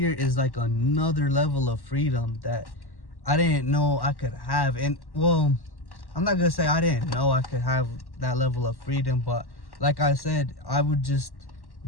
is like another level of freedom that I didn't know I could have. And well, I'm not gonna say I didn't know I could have that level of freedom, but like I said, I would just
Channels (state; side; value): late; right; 1.1 ms